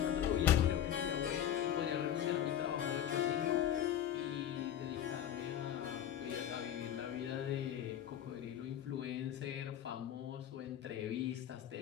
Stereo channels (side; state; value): right; quieter; 10.5 dB